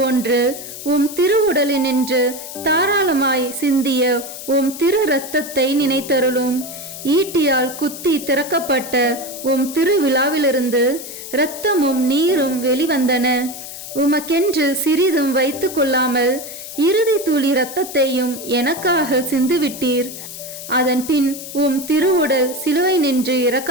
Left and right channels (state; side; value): noise; left; hiss, 11 dB below the sound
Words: உம் திருவுடலினின்று தாராளமாய் சிந்திய உம் திரு இரத்தத்தை நினைத்தருளும். ஈட்டியால் குத்தி திறக்கப்பட்ட உம் திருவிழாவிலிருந்து இரத்தமும் நீரும் வெளிவந்தன. உமக்கென்று சிறிதும் வைத்து கொள்ளாமல் இறுதி துளி இரத்தத்தையும் எனக்காக சிந்துவிட்டீர். அதன் பின் உம் திருவுடல் சிலுவை நின்று